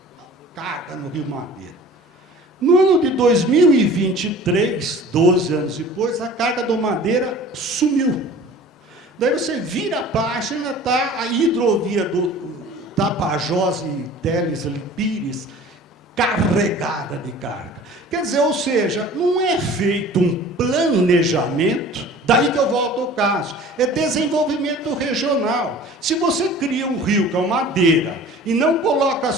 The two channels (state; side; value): normal; both; correlation 0.44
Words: no Rio Madeira. No ano de 2023, 12 anos depois, a carga do Madeira sumiu. Daí você vira a página, está a hidrovia do Tapajós e Teles Pires carregada de carga. Quer dizer, ou seja, não é feito um planejamento, daí que eu volto ao caso, é desenvolvimento regional. Se você cria um rio com Madeira e não coloca